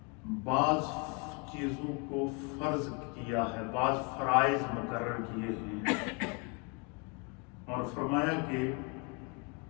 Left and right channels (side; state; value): right; quieter; 32.1 dB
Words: بعض چیزوں کو فرض کیا ہے، بعض فرائض مقرر کیے ہیں، اور فرمایا کہ